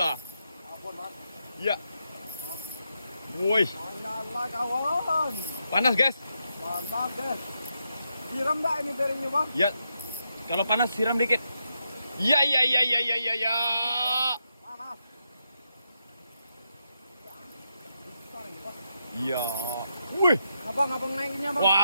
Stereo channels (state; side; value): inverted; both; correlation -0.83